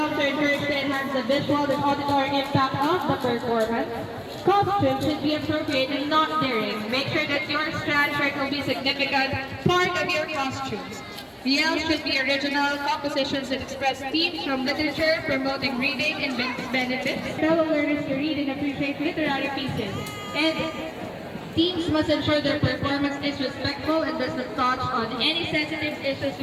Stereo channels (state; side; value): identical; both; correlation 1.00